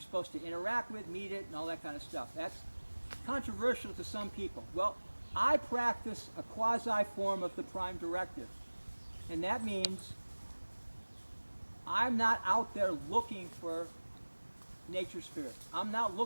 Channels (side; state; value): both; inverted; correlation -1.00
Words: supposed to interact with, meet it, and all that kind of stuff. That's controversial to some people. Well, I practice a quasi form of the prime directive. And that means I'm not out there looking for nature spirit. I'm not